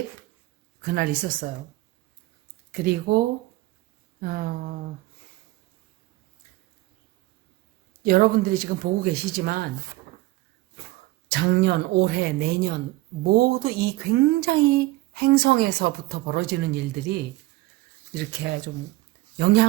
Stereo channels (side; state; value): left; quieter; 19.0 dB